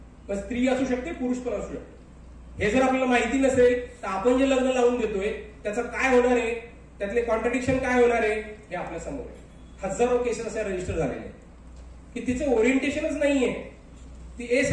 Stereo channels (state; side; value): identical; both; correlation 1.00